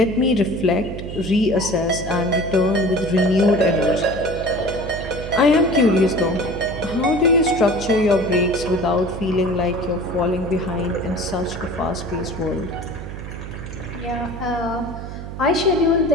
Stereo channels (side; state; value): right; noise; hum, 9 dB below the sound